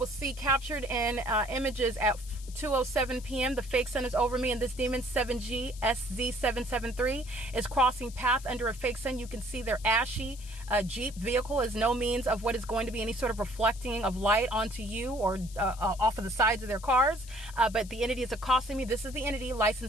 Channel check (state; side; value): noise; left; hiss, 18 dB below the sound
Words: see captured in images at 2:07 p.m. The fake sun is over me, and this demon 7GSZ773 is crossing path under a fake sun. You can see their ashy Jeep vehicle is no means of what is going to be any sort of reflecting of light onto you or off of the sides of their cars. But the entity is accosting me. This is the entity,